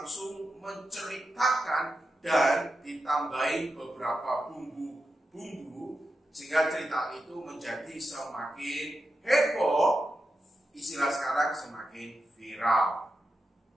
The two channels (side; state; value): both; normal; correlation 0.89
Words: menceritakan dan ditambahin beberapa bumbu-bumbu sehingga cerita itu menjadi semakin heboh, istilah sekarang semakin viral.